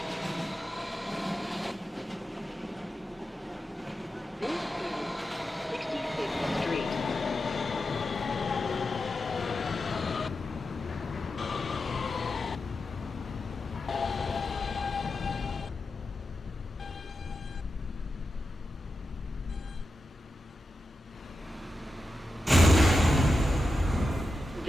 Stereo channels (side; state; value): both; normal; correlation 0.90